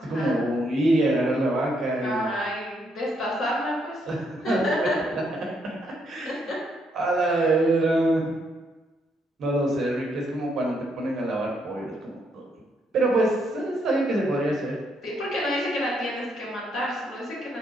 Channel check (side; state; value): both; normal; correlation 0.74